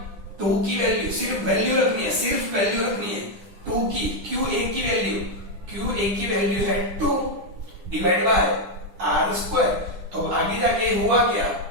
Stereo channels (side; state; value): left; late; 10 ms